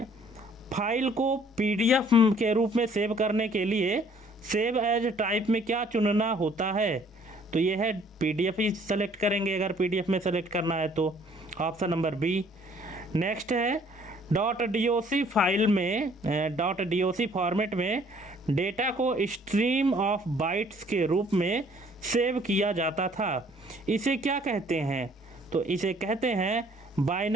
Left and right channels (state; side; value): normal; both; correlation 0.59